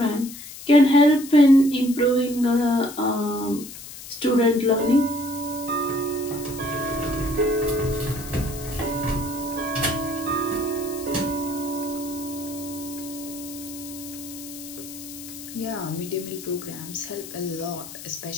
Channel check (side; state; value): left; noise; hiss, 13 dB below the sound